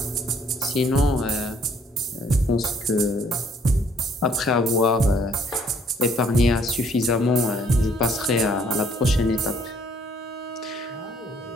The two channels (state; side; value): normal; both; correlation 0.63